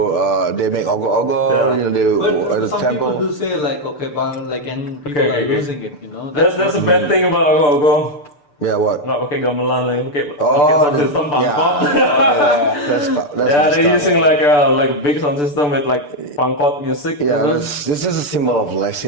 They make ogo-ogo. Yeah. You know, they But at the some temple. people do say like okay, like and people are losing it, you know. That's a bad thing about go. Yeah, what? Nggak pakai gamelan lagi, pakai Oh, sound system yeah. pangkot. That's Yeah, they're messed up. using like a big sound system with like pangkot music. Yeah, you know? this is a symbol of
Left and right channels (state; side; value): late; right; 6.8 ms